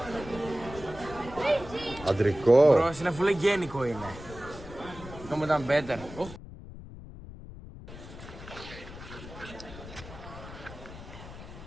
Αντρικό. Bro, είναι φουλε γένικο είναι. Αυτό ήταν better.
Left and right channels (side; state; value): left; noise; rumble, 14 dB below the sound